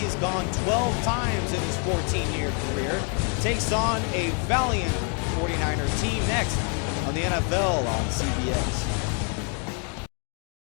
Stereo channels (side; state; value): right; quieter; 39.7 dB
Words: gone 12 times in his 14-year career. Takes on a valiant 49er team next on the NFL on CBS.